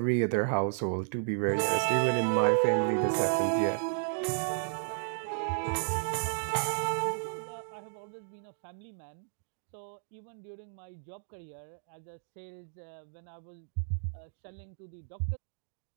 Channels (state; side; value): silent; left; digital silence